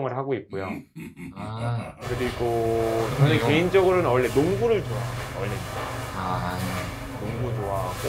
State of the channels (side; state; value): both; identical; correlation 1.00